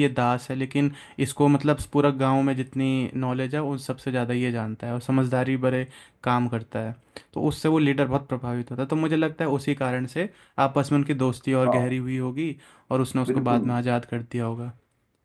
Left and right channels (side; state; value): both; identical; correlation 1.00